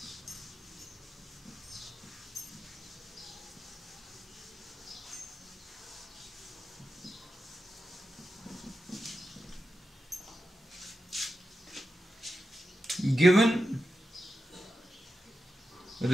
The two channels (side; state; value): both; normal; correlation 0.90